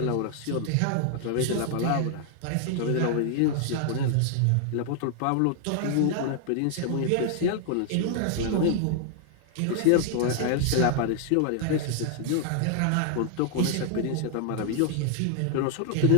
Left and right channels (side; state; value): both; different; correlation 0.00